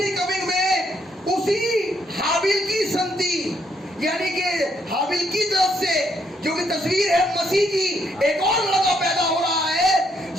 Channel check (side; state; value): both; normal; correlation 0.73